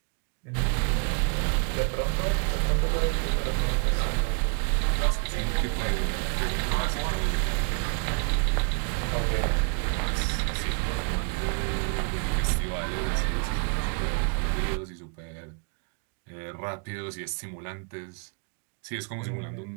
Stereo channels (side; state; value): left; quieter; 38.9 dB